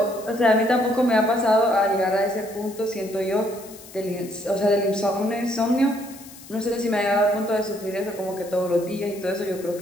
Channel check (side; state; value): left; noise; hiss, 19 dB below the sound